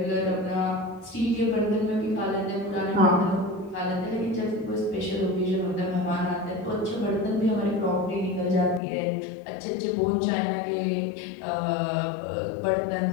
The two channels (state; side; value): drops out; right; at 8.8 s